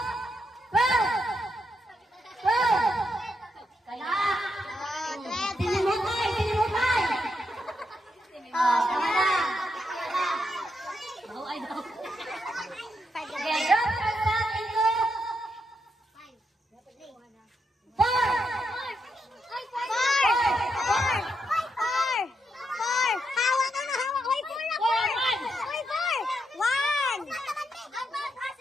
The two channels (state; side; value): normal; both; correlation 0.81